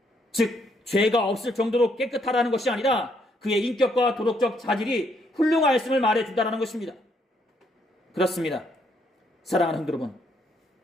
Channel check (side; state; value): both; normal; correlation 0.72